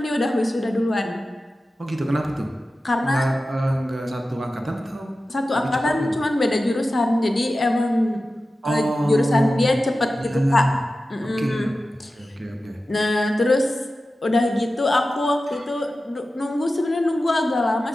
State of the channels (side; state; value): both; normal; correlation 0.94